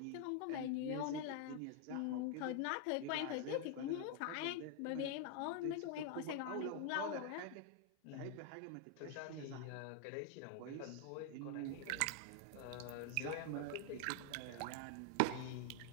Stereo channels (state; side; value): different; both; correlation 0.00